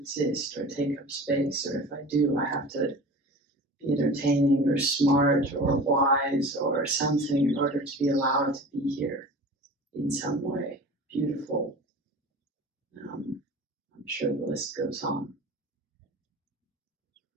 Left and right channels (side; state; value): both; normal; correlation 0.38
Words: or take up space, or if I do, I have to be entertaining or smart or wise or something in order to be allowed to be here in some way. Beautiful. I'm sure the list goes on.